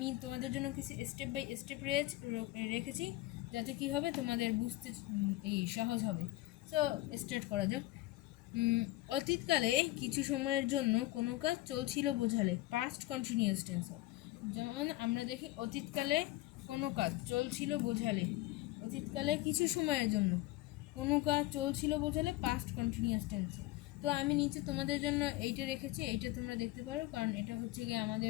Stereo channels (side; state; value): right; quieter; 18.0 dB